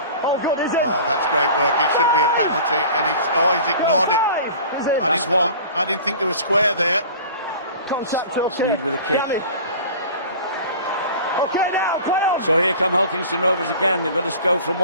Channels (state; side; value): inverted; both; correlation -0.41